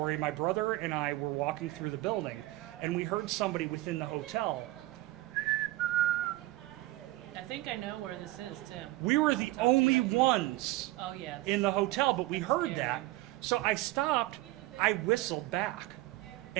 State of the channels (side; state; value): left; quieter; 18.1 dB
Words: my brother and I were walking through the building, and we heard somebody within the hotel. I think I know where this is, Tim. We were the only ones in the hotel, but we heard that. So I stopped, I whistled back,